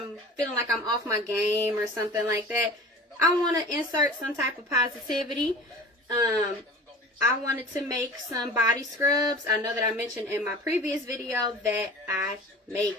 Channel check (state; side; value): normal; both; correlation 0.39